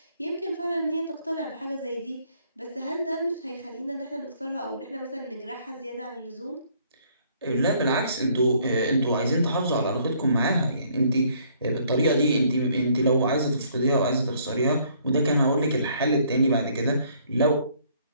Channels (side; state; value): both; inverted; correlation -0.64